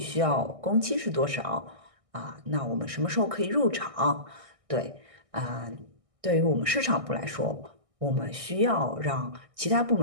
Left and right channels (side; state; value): left; late; 1.6 ms